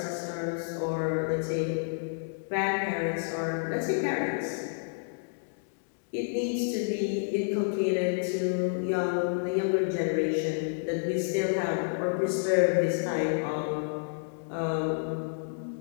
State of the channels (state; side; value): silent; right; digital silence